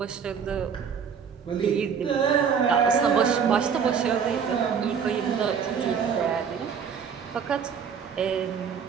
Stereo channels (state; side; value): quieter; left; 6.9 dB